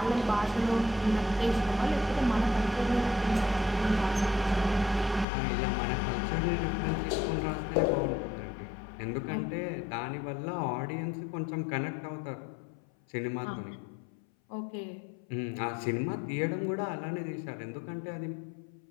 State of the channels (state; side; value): drops out; right; at 5.2 s